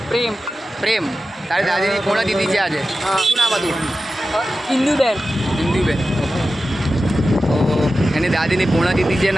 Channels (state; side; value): normal; both; correlation 0.93